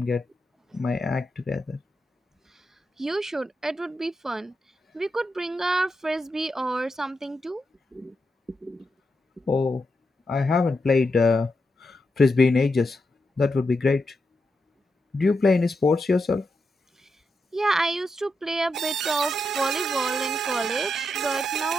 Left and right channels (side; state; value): both; normal; correlation 0.85